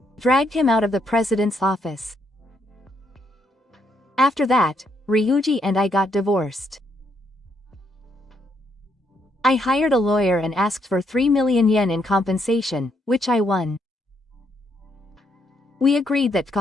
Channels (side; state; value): both; normal; correlation 0.75